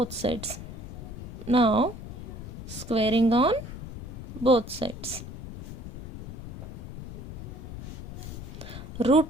sides. Now squaring on both sides. Root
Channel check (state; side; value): noise; left; rumble, 9 dB below the sound